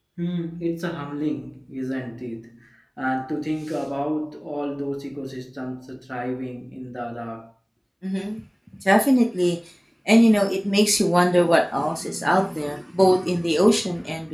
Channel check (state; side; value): identical; both; correlation 1.00